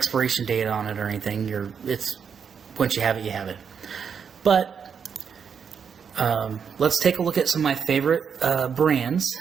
date on it or anything. Once you have it, you have it. But let's take a look at some of my favorite brands,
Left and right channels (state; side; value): quieter; left; 6.9 dB